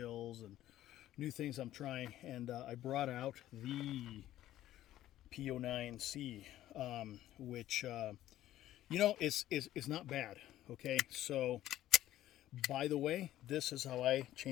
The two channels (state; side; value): quieter; right; 13.6 dB